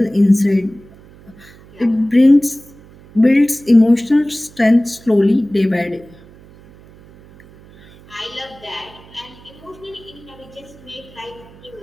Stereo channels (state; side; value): noise; right; hum, 23 dB below the sound